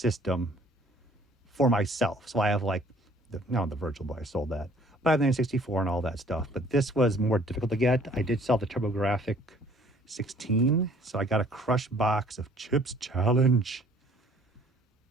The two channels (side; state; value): both; normal; correlation 0.56